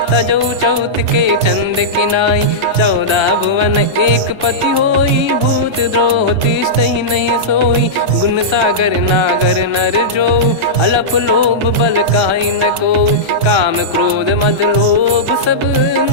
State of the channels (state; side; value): late; left; 1.3 ms